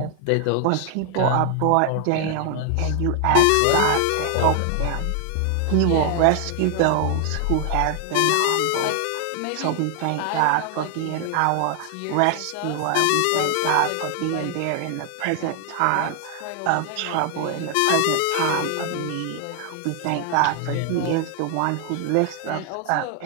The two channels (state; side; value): different; both; correlation 0.00